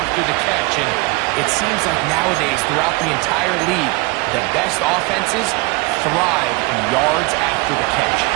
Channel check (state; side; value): quieter; left; 25.3 dB